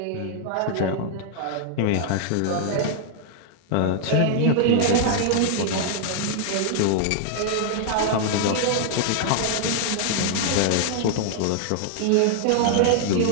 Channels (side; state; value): both; different; correlation -0.01